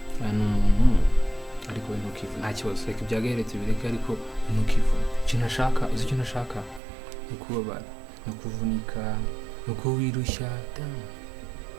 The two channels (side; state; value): left; drops out; at 6.8 s